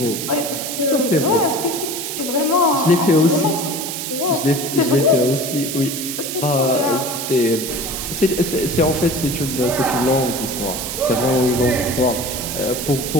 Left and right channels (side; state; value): right; noise; hiss, 5 dB below the sound